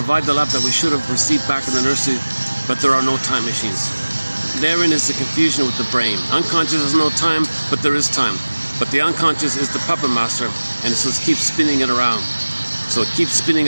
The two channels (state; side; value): inverted; both; correlation -1.00